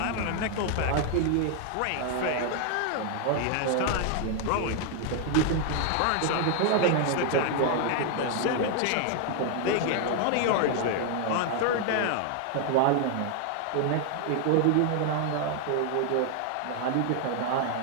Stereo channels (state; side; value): different; both; correlation 0.00